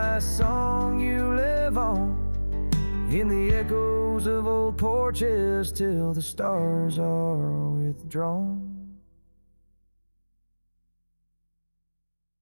song you live on, in the echoes of old porches till the stars are withdrawn.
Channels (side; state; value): both; inverted; correlation -1.00